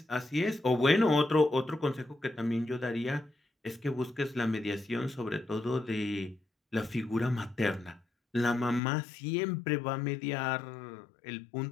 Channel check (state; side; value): drops out; right; at 8.8 s